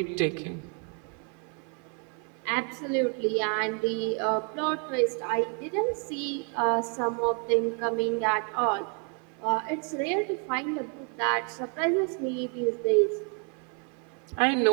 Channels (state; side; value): quieter; left; 38.9 dB